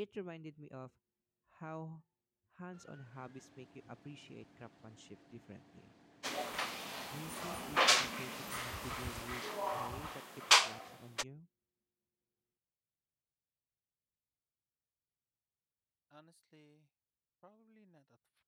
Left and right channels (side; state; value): both; identical; correlation 1.00